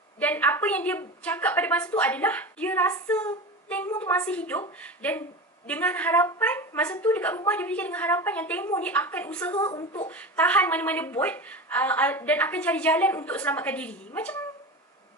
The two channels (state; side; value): normal; both; correlation 0.27